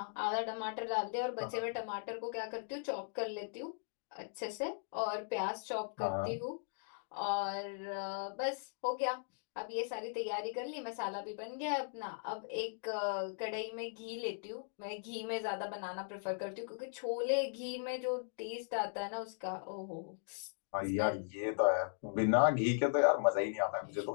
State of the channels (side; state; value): right; silent; digital silence